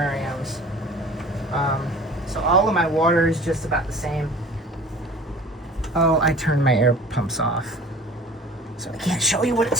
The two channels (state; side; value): normal; both; correlation 0.44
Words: So all of my water is just about the same. Oh, I turned my air pumps off, so I can't show you what it